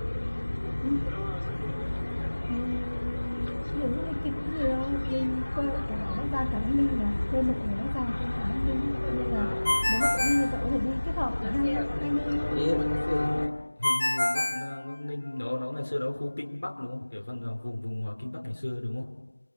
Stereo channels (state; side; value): inverted; both; correlation -1.00